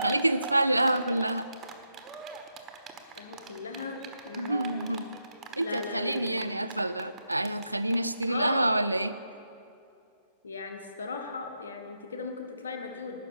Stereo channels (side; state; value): both; inverted; correlation -0.84